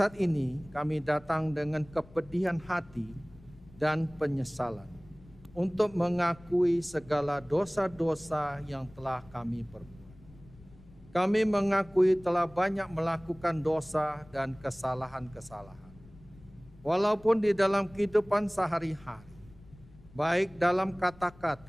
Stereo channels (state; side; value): noise; left; rumble, 23 dB below the sound